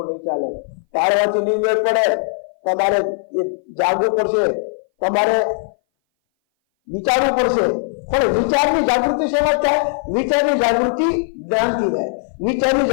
નહીં ચાલે. ચાલવાથી નહીં મેળ પડે. તમારે જાગવું પડશે, તમારે વિચારવું પડશે. પણ વિચારની જાગૃતિ શેમાં થાય? વિચારની જાગૃતિ જ્ઞાનથી રહે, વિચારની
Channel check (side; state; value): right; silent; 60 dB below the other